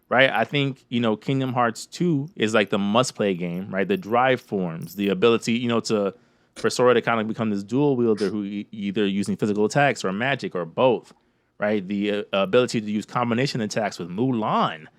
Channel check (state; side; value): identical; both; correlation 1.00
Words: right? I think Kingdom Hearts 2 is like the must-play game, right? The drive forms, the ability, for Sora to kind of become this dual wielder who either using physical attacks or magic or both, right? The ability to use combination attacks with Mulan,